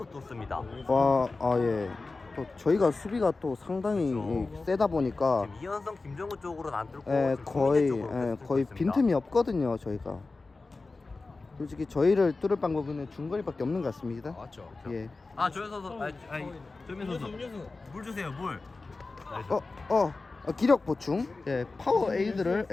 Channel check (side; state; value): right; quieter; 3.6 dB